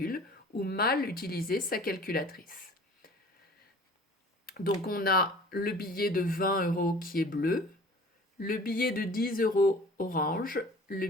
ou mal utiliser sa calculatrice. Donc on a le billet de 20 € qui est bleu, le billet de 10 € orange, le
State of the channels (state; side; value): normal; both; correlation 0.46